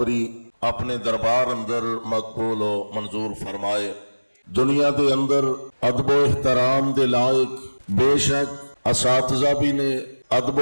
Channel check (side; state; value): both; inverted; correlation -1.00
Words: اپنے دربار اندر مقبول و منظور فرمائے۔ دنیا دے اندر ادب و احترام دے لائق بے شک اساتذہ بھی نے، ادب و